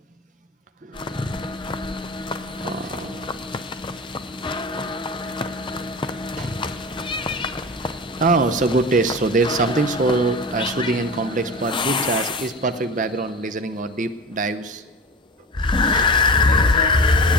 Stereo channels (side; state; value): both; normal; correlation 0.32